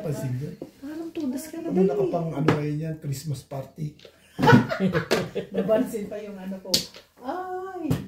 ko. Parang todas ka na Ano nakapang ano kayo yan? Christmas party. Nabansin pa yung ano ko. Ay!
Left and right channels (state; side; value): identical; both; correlation 1.00